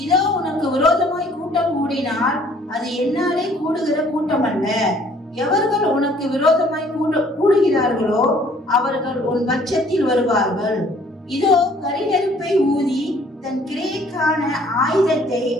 இதோ உனக்கு விரோதமாய் கூட்டம் கூடினால் அது என்னாலே கூடுகிற கூட்டம் அல்ல. எவர்கள் உனக்கு விரோதமாய் கூடுகிறார்களோ அவர்கள் உன் பட்சத்தில் வருவார்கள். இதோ கரிநெருப்பை ஊதி தன் கிரியைக்கான ஆயுதத்தை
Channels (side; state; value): both; normal; correlation 0.58